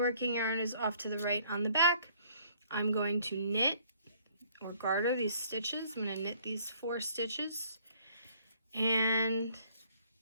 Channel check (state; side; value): inverted; both; correlation -0.60